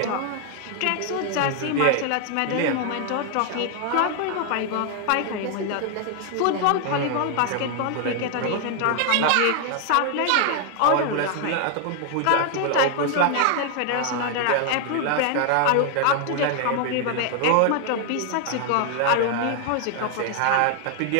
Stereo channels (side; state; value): both; different; correlation 0.00